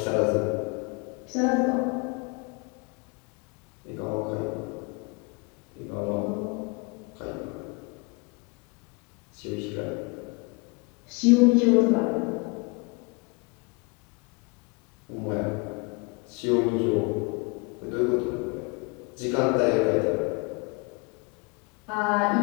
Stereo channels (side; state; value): right; quieter; 30.5 dB